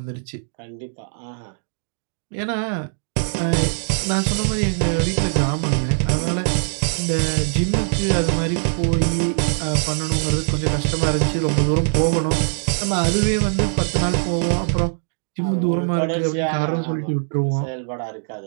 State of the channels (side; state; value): left; silent; digital silence